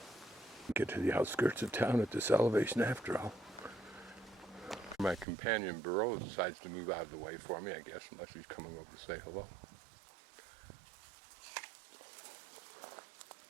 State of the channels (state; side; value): drops out; left; at 5.2 s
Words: Get to the outskirts of town at this elevation after all. My companion Burrow decides to move out of the way for me, I guess, unless he's coming over to say hello.